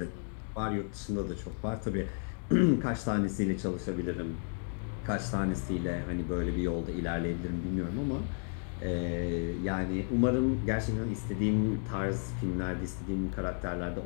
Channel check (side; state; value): right; silent; 56 dB below the other